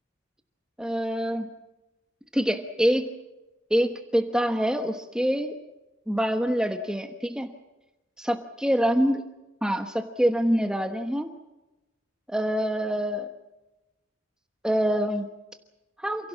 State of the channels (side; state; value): both; normal; correlation 0.91